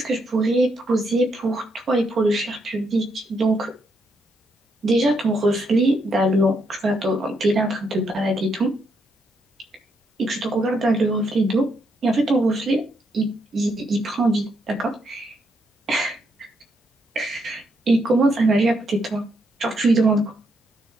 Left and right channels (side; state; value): both; normal; correlation 0.77